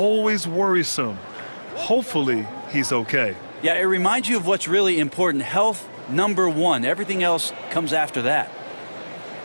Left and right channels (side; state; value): both; inverted; correlation -1.00